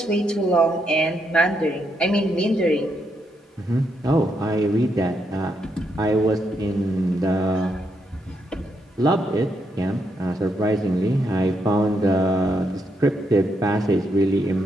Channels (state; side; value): normal; both; correlation 0.79